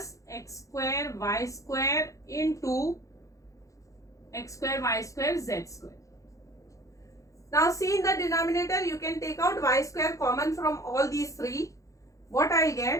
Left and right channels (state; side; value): late; right; 0.16 ms